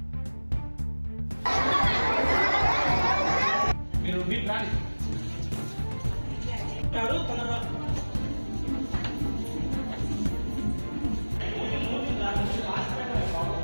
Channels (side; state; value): both; inverted; correlation -1.00